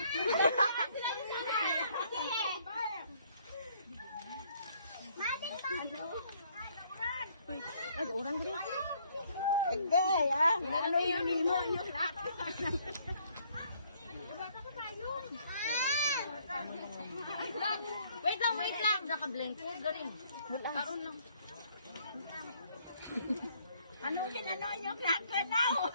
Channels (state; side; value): inverted; both; correlation -0.64